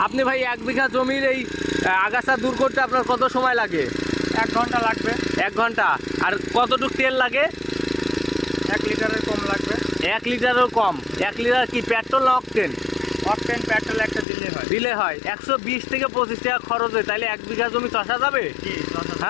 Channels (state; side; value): drops out; right; at 14.2 s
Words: আপনি ভাই 1 বিঘা জমির এই আগাছা দূর করতে আপনার কত সময় লাগে? 1 ঘন্টা লাগবে। 1 ঘন্টা। আর কতটুকু তেল লাগে? 1 লিটারের কম লাগবে। 1 লিটারেরও কম। 1 লিটার কি পেট্রোল না অকটেন? অকটেন পেট্রোল একটা দিলে হয় 120 থেকে 25 টাকা খরচ হয়, তাইলে 1 বিঘা জমি চষা যাবে? জি।